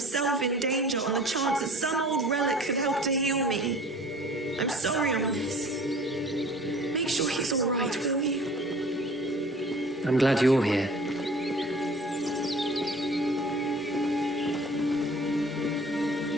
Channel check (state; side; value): normal; both; correlation 0.47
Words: in danger on the chance that some old relic could help to heal me. I'm sorry, Ominous. Make sure he's all right, will you? I'm glad you're here.